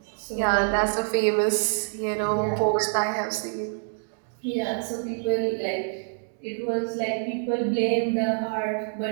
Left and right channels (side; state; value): left; silent; digital silence